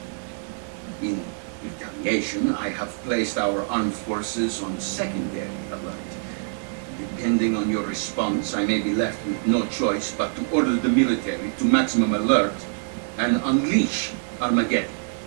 In retaliation, I have placed our armed forces on secondary alert. Depending on your response, I may be left with no choice but to order the military to maximum alert and unleash Armageddon.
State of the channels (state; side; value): silent; left; 62 dB below the other